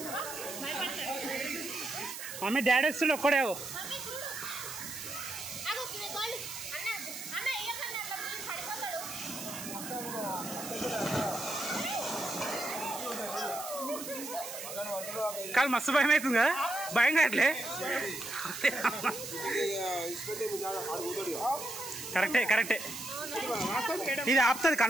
మమ్మీ డాడీ వస్తుండే ఒక్కడే కాదు మస్తు భయం అవుతుంది కదా భయం కావట్లే కరెక్టే కరెక్టే ఇది ఆపుతుంది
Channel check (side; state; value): right; noise; hiss, 9 dB below the sound